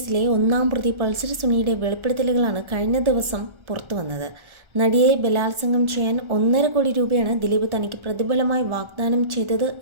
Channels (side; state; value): left; late; 1.3 ms